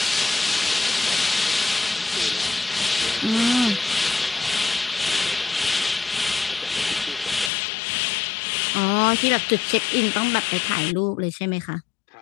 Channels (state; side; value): drops out; right; at 7.5 s